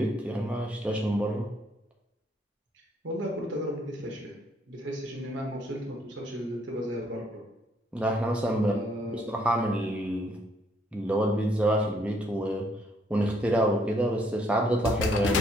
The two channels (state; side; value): normal; both; correlation 0.68